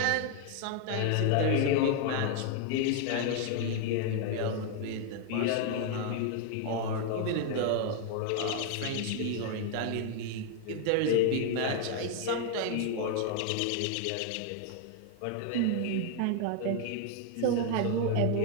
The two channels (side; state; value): both; different; correlation 0.00